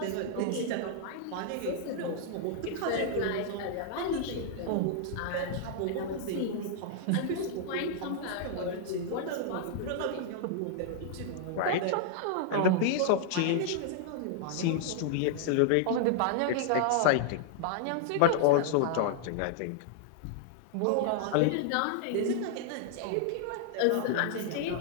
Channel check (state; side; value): different; both; correlation -0.01